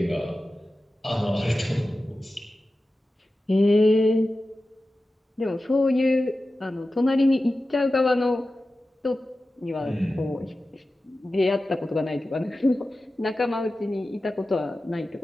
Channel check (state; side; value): normal; both; correlation 0.94